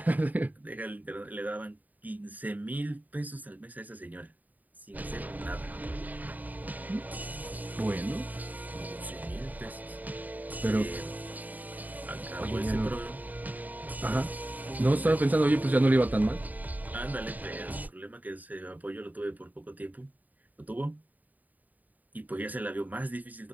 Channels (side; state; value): left; late; 0.080 ms